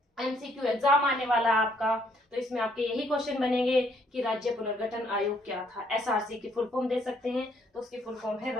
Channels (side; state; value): both; normal; correlation 0.68